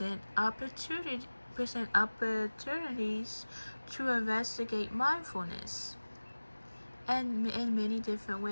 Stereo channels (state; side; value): inverted; both; correlation -1.00